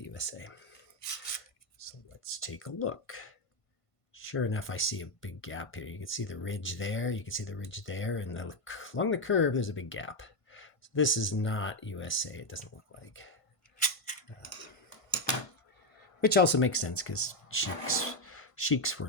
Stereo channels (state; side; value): late; right; 1.5 ms